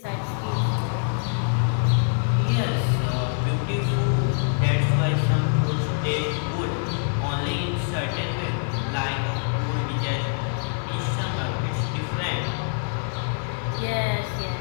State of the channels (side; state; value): right; silent; 62 dB below the other